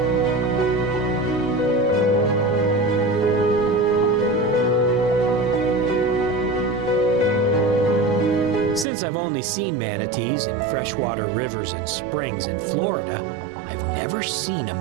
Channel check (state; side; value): drops out; left; at 8.8 s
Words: Since I've only seen manatees in freshwater rivers and springs in Florida, I've never seen a